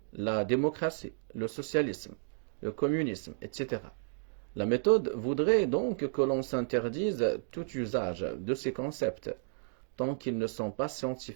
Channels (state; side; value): silent; left; digital silence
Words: la démocratie, le socialisme, le communisme, etc. La méthode voudrait donc que l'on s'interdise tout usage de ces concepts, tant qu'ils ne sont pas